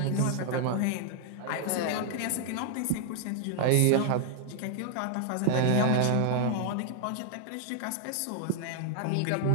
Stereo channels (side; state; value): both; different; correlation 0.00